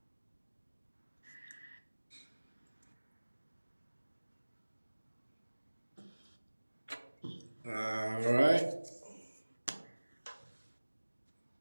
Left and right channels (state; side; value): inverted; both; correlation -1.00